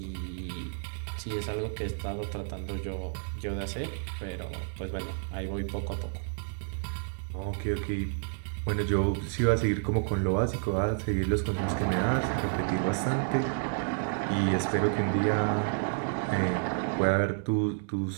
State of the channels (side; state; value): left; silent; digital silence